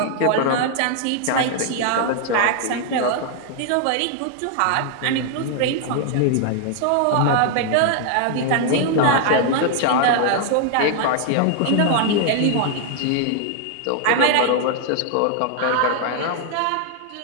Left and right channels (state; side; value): different; both; correlation 0.00